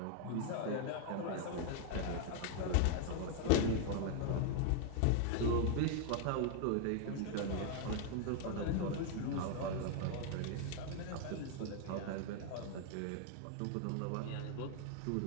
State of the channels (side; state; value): both; different; correlation 0.00